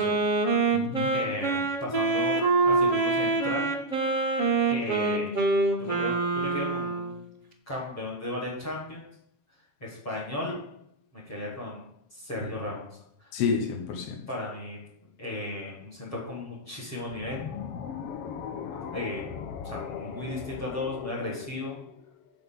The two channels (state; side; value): late; right; 7.3 ms